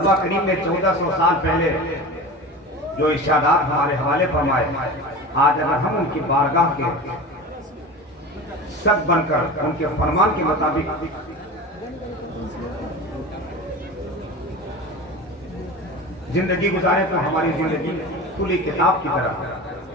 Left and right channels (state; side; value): normal; both; correlation 0.31